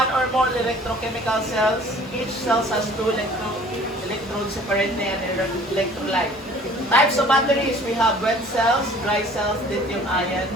or more electrochemical cells. Each cell has two electrodes separately and electrolyte. Types of batteries, we have wet cells, dry cells, lithium ion.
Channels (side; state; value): both; normal; correlation 0.50